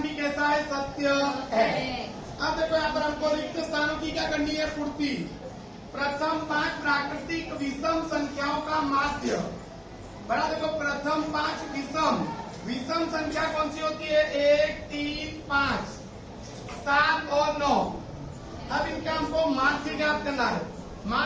भी कैसा है? सत्य है। अब देखो यहाँ पर हमको रिक्त स्थानों की क्या करनी है? पूर्ति। प्रथम 5 प्राकृतिक विषम संख्याओं का माध्य, बड़ा देखो प्रथम 5 विषम संख्या कौन सी होती है? 1, 3, 5, 7 और 9। अब इनका हमको माध्य ज्ञात करना है।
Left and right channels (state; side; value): identical; both; correlation 1.00